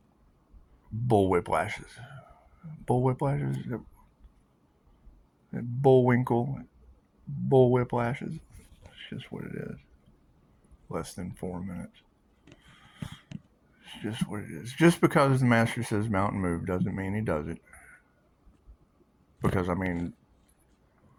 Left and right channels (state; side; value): identical; both; correlation 1.00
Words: bullwhiplashes. Bullwhiplashes? Bullwinkle? Bullwhiplashes? It's just what it is. Less than 4 minutes. It's just what it is. Just because the master says mountain move doesn't mean he does it. Because, I mean,